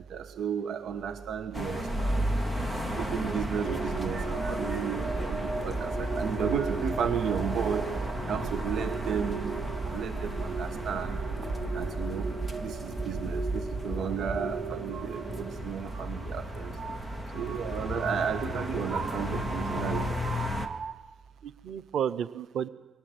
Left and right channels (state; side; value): quieter; left; 3.6 dB